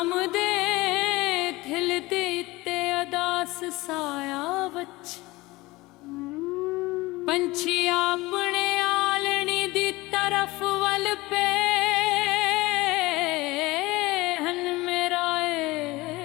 ਦੇ ਥਿਲ ਦੇ ਤੇ ਅਦਾਸ ਸਾਇਆ ਵਿੱਚ ਪੰਛੀ ਆਪਣੇ ਆਲਣੀ ਦੀ ਤਰਫ ਵੱਲ ਪੇ ਹਨ ਮੇਰਾ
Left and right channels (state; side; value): quieter; right; 20.7 dB